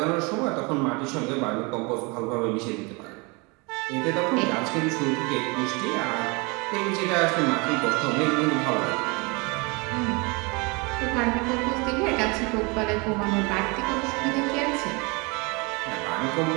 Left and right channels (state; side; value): quieter; left; 28.6 dB